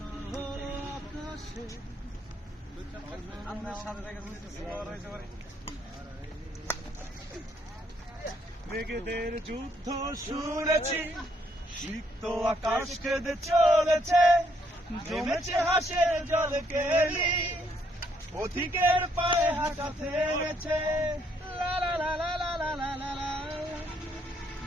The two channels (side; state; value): both; normal; correlation 0.71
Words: আকাশে। মেঘেদের যুদ্ধ শুনেছি, সিক্ত আকাশ কেঁদে চলেছে, জমেছে হাসের জল কেলি, পথিকের পায়ে হাঁটা থেমেছে।